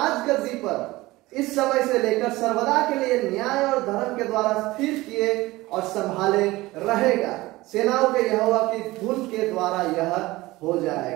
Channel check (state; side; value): quieter; left; 19.4 dB